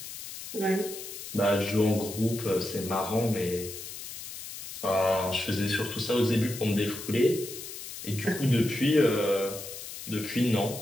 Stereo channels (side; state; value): left; noise; hiss, 10 dB below the sound